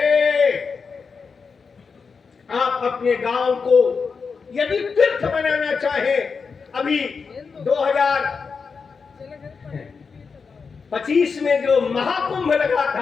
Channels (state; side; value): quieter; right; 5.2 dB